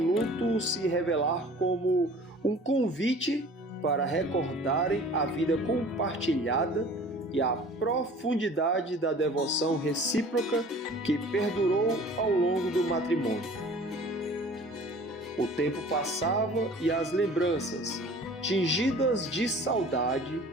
luto se revelar como um convite para recordarem a vida compartilhada e a profundidade da devoção recíproca que perdurou ao longo do matrimônio. O tempo passava e as lembranças, tingidas de saudade,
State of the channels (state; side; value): normal; both; correlation 0.46